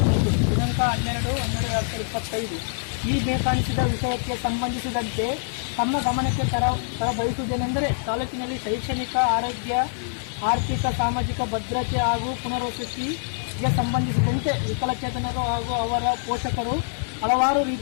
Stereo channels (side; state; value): right; silent; digital silence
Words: 12/12/2025. ಈ ಬೇಕಾಣಿಸಿದ ವಿಷಯಕ್ಕೆ ಸಂಬಂಧಿಸಿದಂತೆ ತಮ್ಮ ಗಮನಕ್ಕೆ ತರಬಯಸುವುದೇನೆಂದರೆ, ತಾಲೂಕಿನಲ್ಲಿ ಶೈಕ್ಷಣಿಕ, ಆರೋಗ್ಯ, ಆರ್ಥಿಕ, ಸಾಮಾಜಿಕ ಭದ್ರತೆ ಹಾಗೂ ಪುನರ್ವಸತಿಗೆ ಸಂಬಂಧಿಸಿದಂತೆ ವಿಕಲಚೇತನರು ಹಾಗೂ ಅವರ ಪೋಷಕರು ಹಲವಾರು